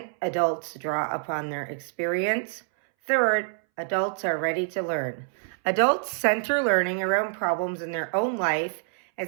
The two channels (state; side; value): silent; left; 61 dB below the other